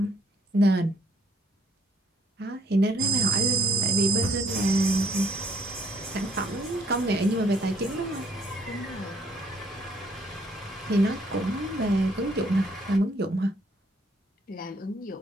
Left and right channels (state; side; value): normal; both; correlation 0.66